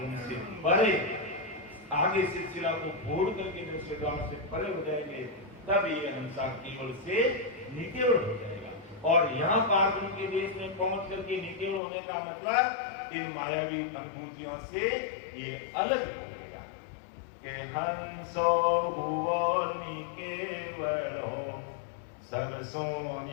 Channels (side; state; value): right; drops out; at 11.8 s